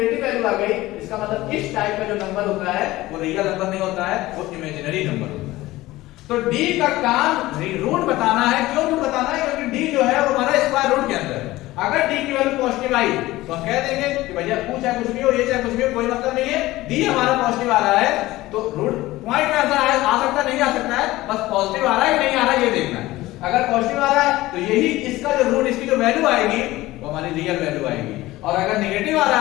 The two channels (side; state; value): right; quieter; 17.8 dB